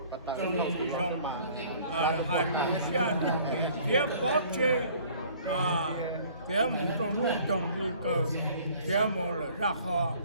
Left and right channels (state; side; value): inverted; both; correlation -0.54